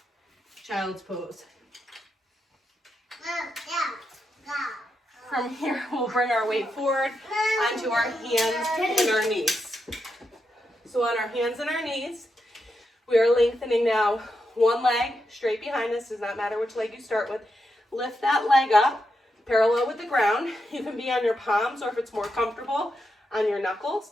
Child's pose. From here, we'll bring our weight forward onto our hands and our knees. So on our hands and our knees, we are lengthening now one leg straight behind us. Does not matter which leg you start with. Lift that leg up, parallel with the ground. You can be on your palms, or if it's more comfortable, on your knuckles.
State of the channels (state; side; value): normal; both; correlation 0.85